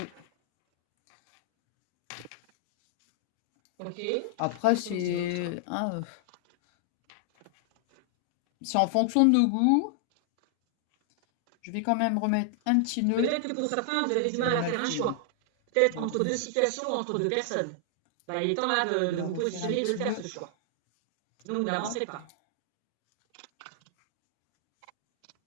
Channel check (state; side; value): different; both; correlation 0.00